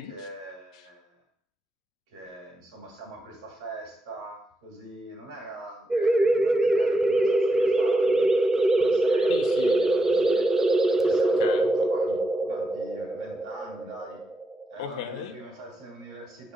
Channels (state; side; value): normal; both; correlation 0.85